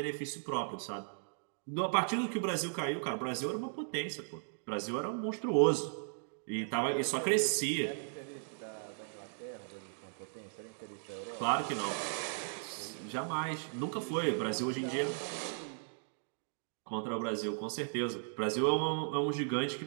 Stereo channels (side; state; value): left; silent; digital silence